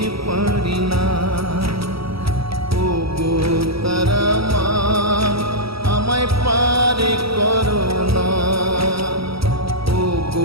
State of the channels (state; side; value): late; left; 0.76 ms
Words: পারি না। ও গো তারা মা, আমায় পার করো না। ও